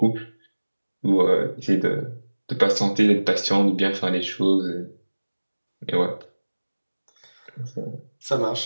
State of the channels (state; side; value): inverted; both; correlation -1.00